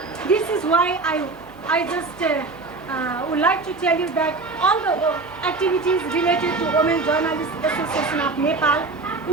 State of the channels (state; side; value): quieter; left; 3.7 dB